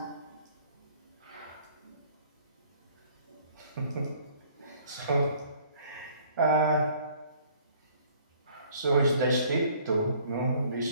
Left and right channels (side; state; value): both; inverted; correlation -0.57